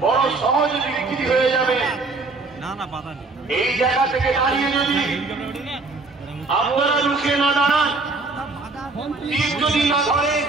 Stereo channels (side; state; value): left; quieter; 3.6 dB